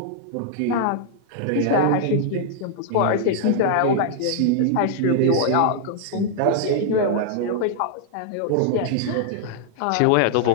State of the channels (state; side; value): different; both; correlation 0.00